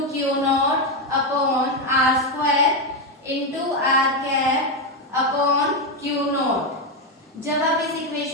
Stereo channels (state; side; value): normal; both; correlation 0.08